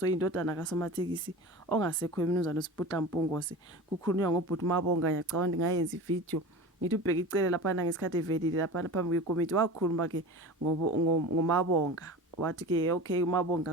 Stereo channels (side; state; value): both; normal; correlation 0.33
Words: oyindodana kaSomathekisi ongasekho umnumzane uSiputla Mpungose. Kukhulunywa ngobhuti Mabonga ngiyacabanga ngayenza ivideo ngithi ubheka icele lapha ngesikhathi evelile lapha phambi kwekomiti wakhuluma ke ngomabonga. Wathi ke okay